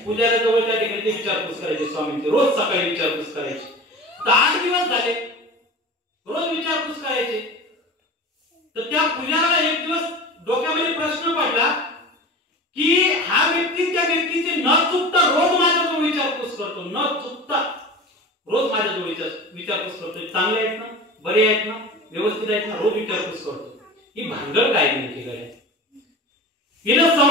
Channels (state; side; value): normal; both; correlation 0.34